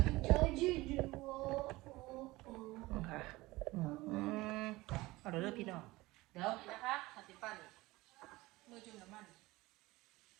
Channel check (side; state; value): left; quieter; 20.1 dB